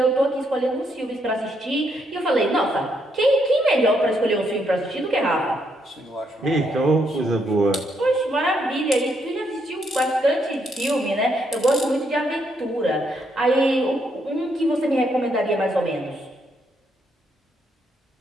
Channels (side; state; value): both; normal; correlation 0.75